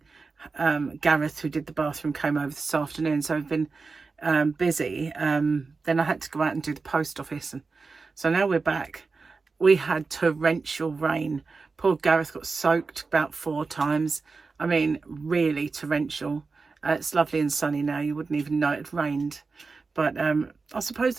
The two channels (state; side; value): quieter; left; 4.3 dB